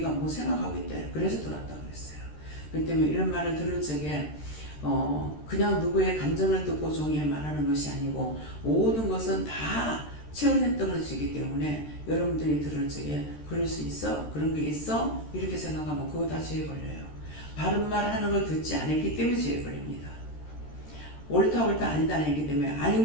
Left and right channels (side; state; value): right; late; 13 ms